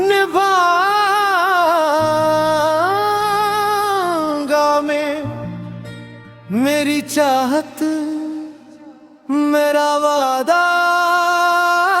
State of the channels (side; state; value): both; identical; correlation 1.00